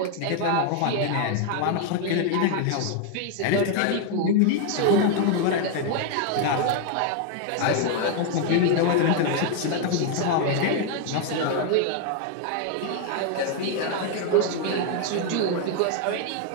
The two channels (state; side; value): different; both; correlation 0.00